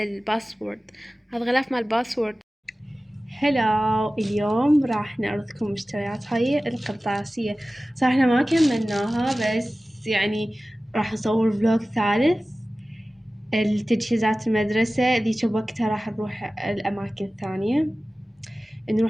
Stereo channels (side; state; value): both; normal; correlation 0.96